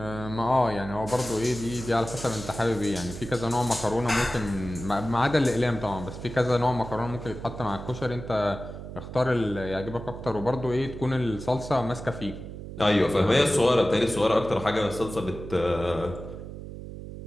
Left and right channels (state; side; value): noise; right; hum, 11 dB below the sound